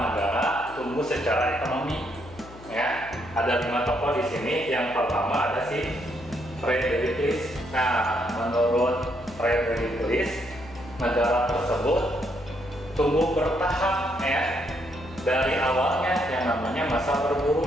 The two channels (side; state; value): left; noise; hum, 19 dB below the sound